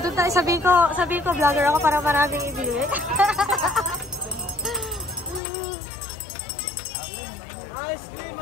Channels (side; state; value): right; drops out; at 5.4 s